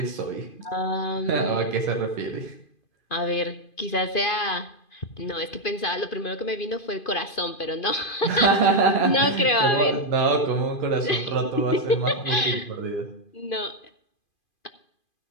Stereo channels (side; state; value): right; late; 2.5 ms